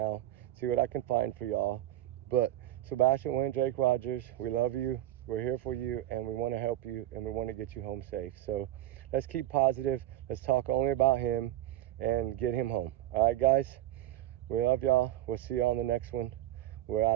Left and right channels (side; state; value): left; quieter; 14.2 dB